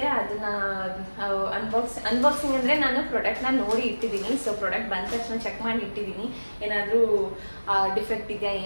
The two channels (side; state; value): both; inverted; correlation -1.00